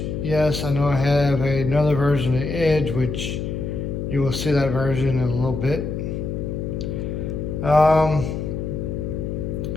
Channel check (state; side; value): noise; left; hum, 4 dB below the sound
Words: Yes, I know I have another version of Edge, which you will see that version in a little bit.